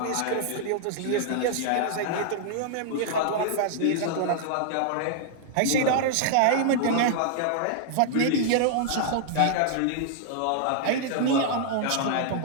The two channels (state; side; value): different; both; correlation -0.01